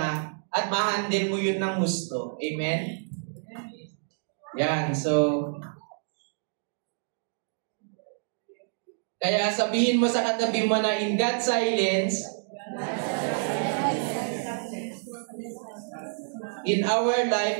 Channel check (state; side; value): silent; left; digital silence